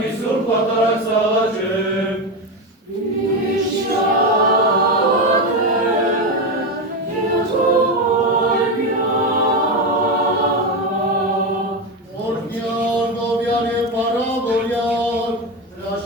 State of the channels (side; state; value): both; normal; correlation 0.15